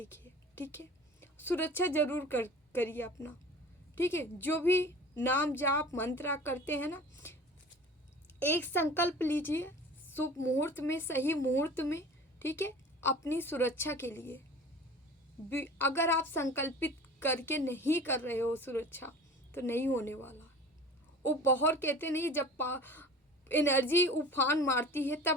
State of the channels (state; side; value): normal; both; correlation 0.41